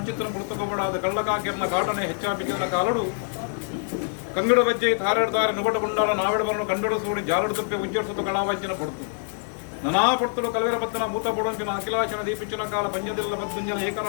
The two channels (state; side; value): silent; right; digital silence